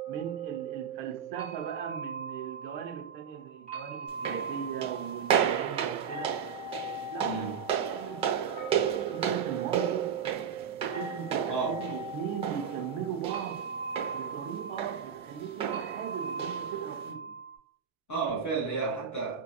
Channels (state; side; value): quieter; left; 7.1 dB